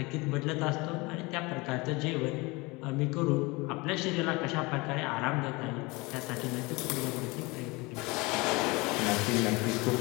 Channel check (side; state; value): right; quieter; 24.7 dB